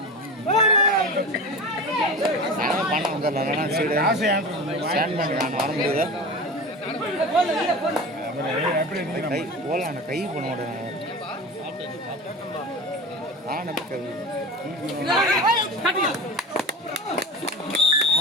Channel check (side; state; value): both; normal; correlation 0.30